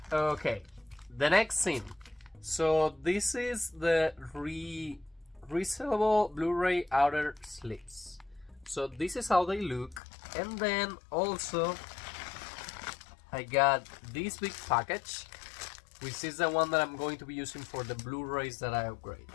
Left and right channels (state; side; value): drops out; right; at 10.0 s